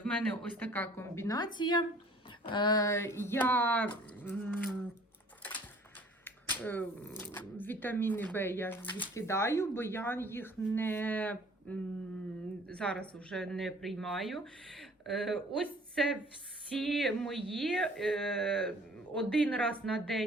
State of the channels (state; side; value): normal; both; correlation 0.53